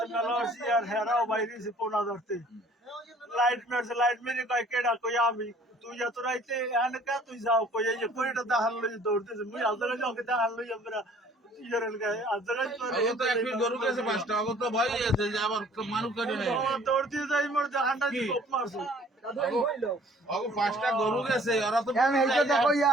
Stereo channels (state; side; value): normal; both; correlation 0.55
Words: মেলা আসি আর হেরাও বাইরে ফোন ধরতে লাইট মেরছে লাইট মেরে কয় কেডা কই আমি তুই যত রাইতে এখানে কা তুই যাও কই এই যে কইটা দেখান লই দৌড়তেছে মুই আজকে যাও কে দেখান লই আমরা ইজরেল গায় আজকে তো এক গরু গেছে পাঁচটা আগত তো ভয় আছে যে আবার মানুষ কাটে নাই দৌড়তে যাই মোর দেখানটা কোপ মারছে আগো পাঁচটা গরু গেছে ওরা তো কেন এইটা দেখো ইয়া